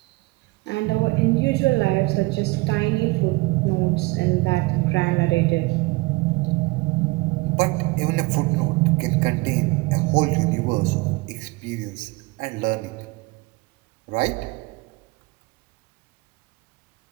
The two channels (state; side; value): quieter; left; 23.5 dB